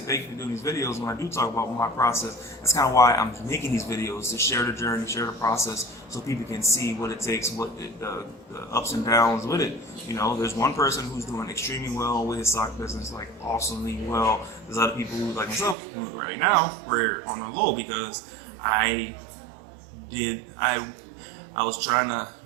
you for doing these videos. When I do talk about my process, that's kind of why I'm making these videos, to share the journey, share the process, so people can see what it takes, what the ups and downs with it. There's one person who's doing extremely well with his sock business, like awesomely well. There's other people who, like myself, who right now we're on the low because I was trying to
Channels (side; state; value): left; drops out; at 15.8 s